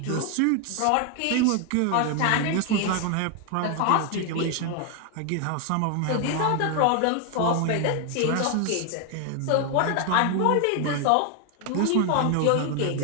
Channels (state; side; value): different; both; correlation 0.01